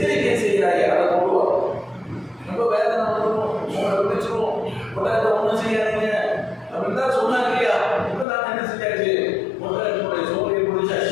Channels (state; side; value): drops out; right; at 8.2 s